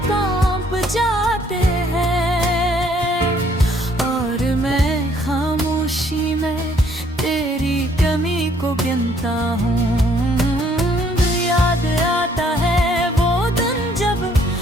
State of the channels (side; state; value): both; normal; correlation 0.64